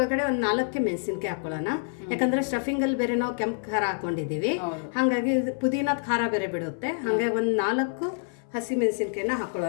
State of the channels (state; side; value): silent; right; 60 dB below the other